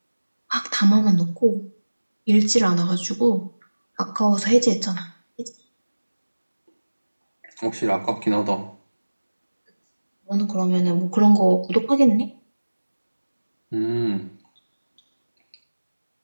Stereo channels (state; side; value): inverted; both; correlation -1.00